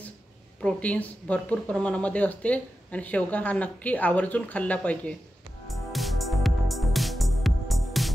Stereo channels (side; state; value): both; normal; correlation 0.91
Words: प्रोटीन्स भरपूर प्रमाणामध्ये असते आणि शेवगा हा नक्की आवर्जून खाल्ला पाहिजे।